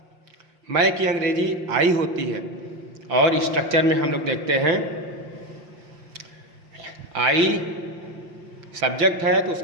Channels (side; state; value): left; late; 5.7 ms